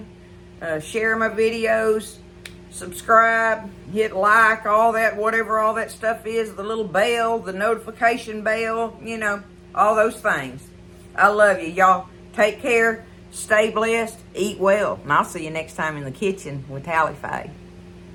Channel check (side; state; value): both; identical; correlation 1.00